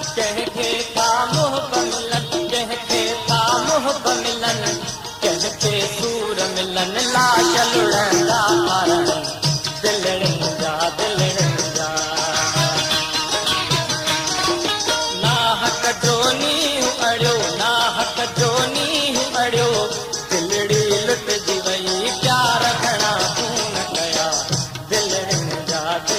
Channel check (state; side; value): identical; both; correlation 1.00